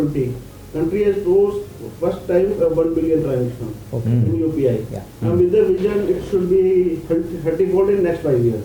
country has closed first time 1 billion transactions in UPI. Yeah. And with the vision, it should be 30-fold in next 5 years.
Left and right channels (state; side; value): identical; both; correlation 1.00